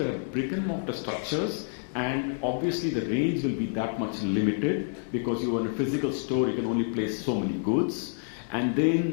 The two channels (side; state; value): right; silent; digital silence